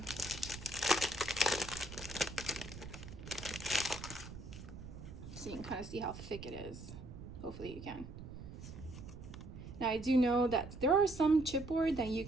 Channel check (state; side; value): noise; right; rumble, 12 dB below the sound